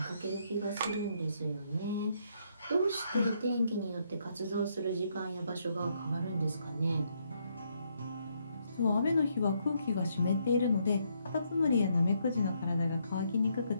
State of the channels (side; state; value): both; inverted; correlation -0.74